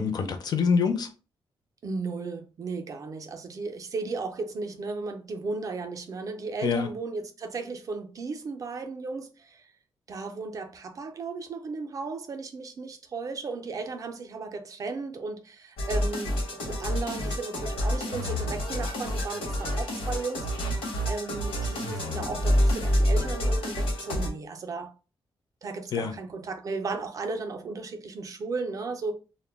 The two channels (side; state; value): both; normal; correlation 0.75